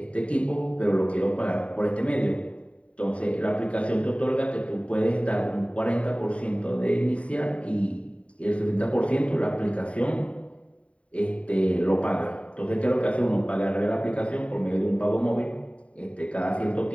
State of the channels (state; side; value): late; right; 0.064 ms